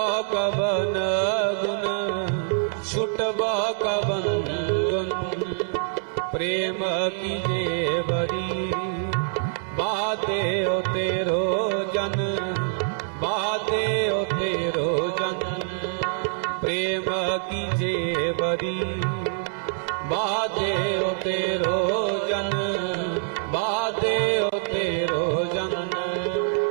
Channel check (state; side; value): silent; left; digital silence